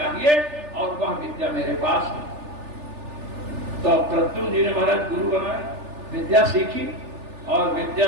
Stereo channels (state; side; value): late; left; 3.4 ms